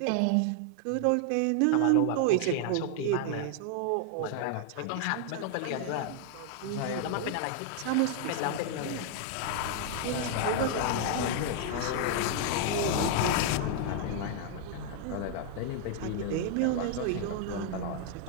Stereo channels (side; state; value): both; different; correlation 0.00